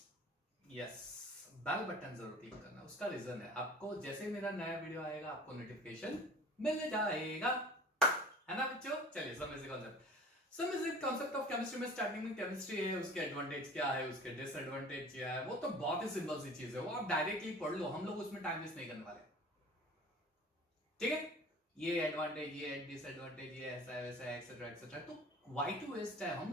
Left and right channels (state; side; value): normal; both; correlation 0.43